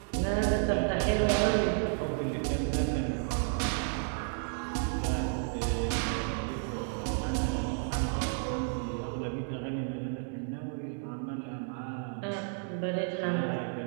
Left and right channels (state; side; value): silent; left; 56 dB below the other